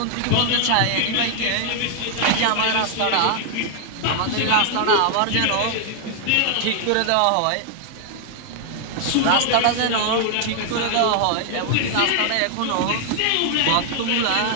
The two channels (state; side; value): different; both; correlation 0.00